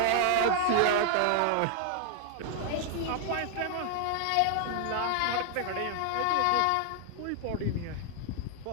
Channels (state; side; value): different; both; correlation 0.00